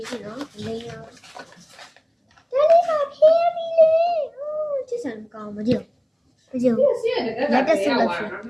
းကြည့်နော်လိမ့်အောင်ဒါလေးပါခဲပြီလေချစ်စံကောင်းမကြည့်လက်တက်ဆက်လို့ရှိ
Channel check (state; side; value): identical; both; correlation 1.00